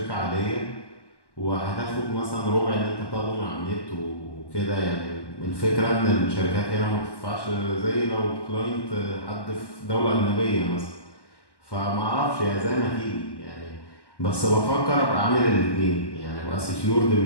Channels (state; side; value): late; right; 1.1 ms